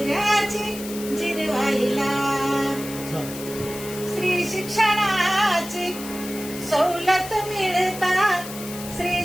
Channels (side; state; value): left; noise; hiss, 12 dB below the sound